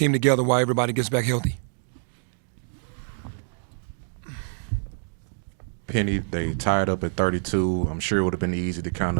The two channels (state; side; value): silent; left; digital silence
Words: together while everybody gets back healthy. Penny, they tied up at 32. I'm sure it would have been easy to kind